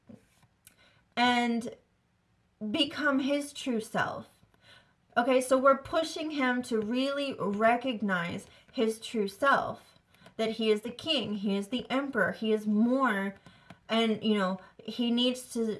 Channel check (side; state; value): both; identical; correlation 1.00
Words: and become his true self. Okay, so we're pushing him to really recognize his true self, that he is the king, he is the emperor, he is more, and, he needs